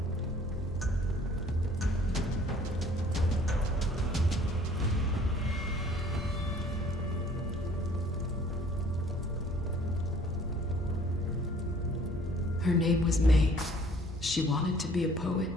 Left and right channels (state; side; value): normal; both; correlation 0.55